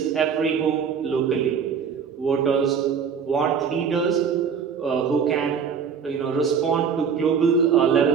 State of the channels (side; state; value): left; quieter; 6.6 dB